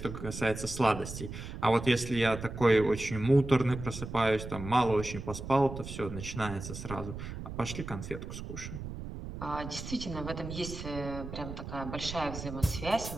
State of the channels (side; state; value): right; noise; rumble, 9 dB below the sound